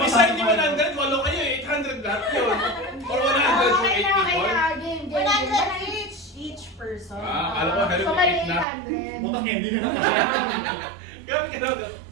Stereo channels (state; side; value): drops out; left; at 8.7 s